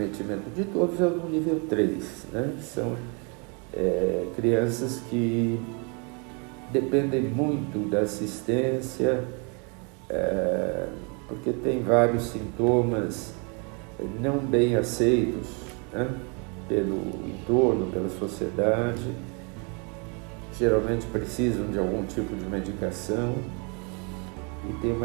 de todos é o do nível 3, né? Que são crianças que dependem muito da assistência, porque tem vários sintomas não bem aceitos, né? Pelo entorno, pela sociedade, geralmente precisam de algum tipo de medicação e tem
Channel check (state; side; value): quieter; left; 34.3 dB